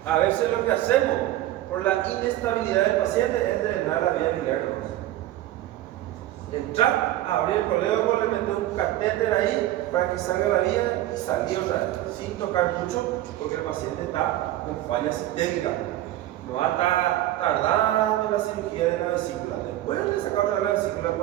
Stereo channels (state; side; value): quieter; left; 14.5 dB